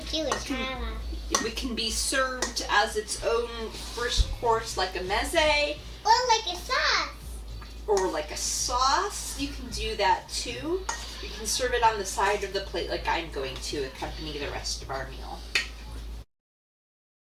Jewish challah. It can be served as its own first course, like a meze, Or like a sauce. or like a sauce. You can do that too. You can serve it on the side of the plate like I'm going to accompany the rest of our meal.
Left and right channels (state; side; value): identical; both; correlation 1.00